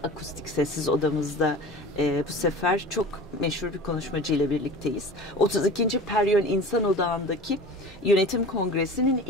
Akustik sessiz odamızda bu sefer çok meşhur bir konuşmacıyla birlikteyiz. 32. Peryön İnsan Odağındaki Yönetim Kongresi'nin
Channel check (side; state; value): both; normal; correlation 0.37